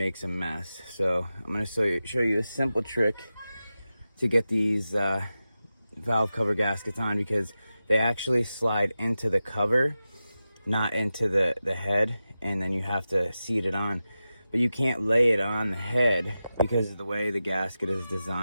a mess. So I'm gonna show you a simple trick to get these valve cover gaskets on, because they actually slide into the cover, not into the head, and then you have to seat it on. But you can't lay it on the head because of the way the gasket is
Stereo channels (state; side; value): inverted; both; correlation -0.93